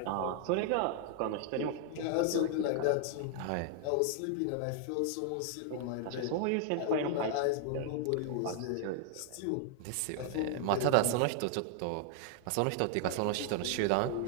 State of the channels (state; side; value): different; both; correlation 0.00